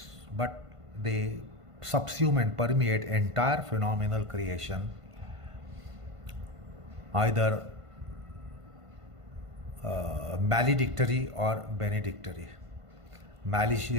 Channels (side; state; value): left; late; 1.5 ms